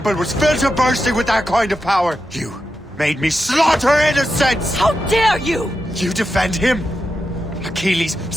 was filled to bursting with that kind of power. You made me slaughter innocents! How dare you! You defend him? Achilles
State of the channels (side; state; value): both; normal; correlation 0.88